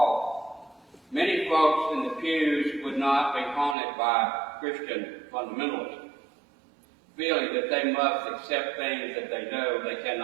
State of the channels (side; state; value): left; drops out; at 3.8 s